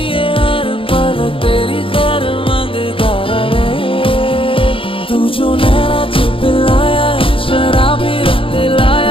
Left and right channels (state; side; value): late; right; 0.26 ms